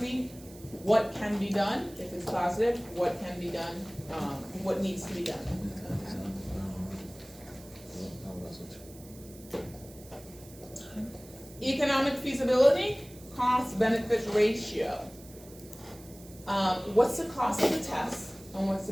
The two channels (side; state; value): right; noise; hiss, 21 dB below the sound